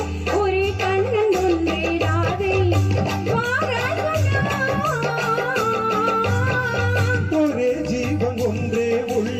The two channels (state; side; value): identical; both; correlation 1.00